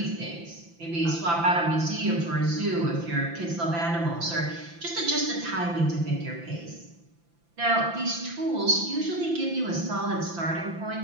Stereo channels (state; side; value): late; left; 5.9 ms